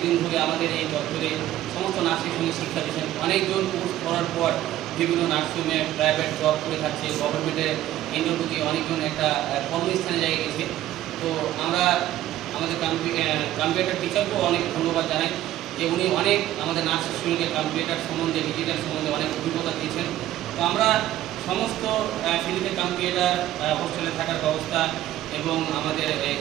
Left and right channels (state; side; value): quieter; left; 13.6 dB